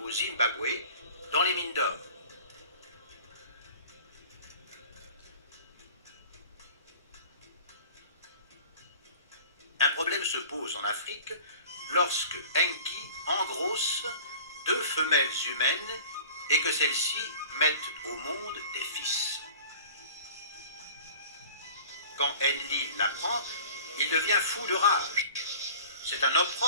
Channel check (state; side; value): inverted; both; correlation -0.43